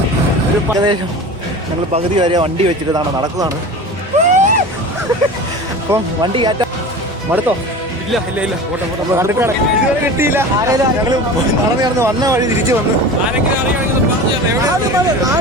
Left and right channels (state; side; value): normal; both; correlation 0.34